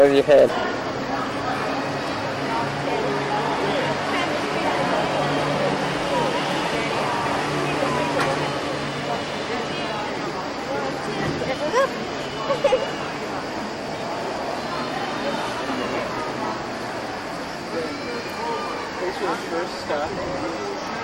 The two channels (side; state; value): both; identical; correlation 1.00